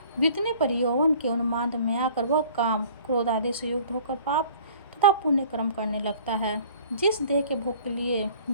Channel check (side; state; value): both; inverted; correlation -0.50